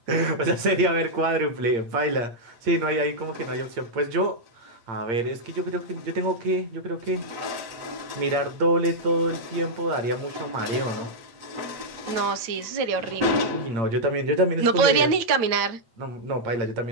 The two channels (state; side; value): late; left; 9.0 ms